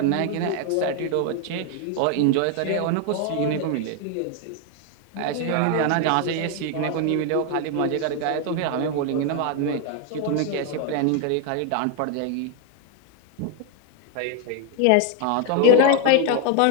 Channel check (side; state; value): both; different; correlation 0.00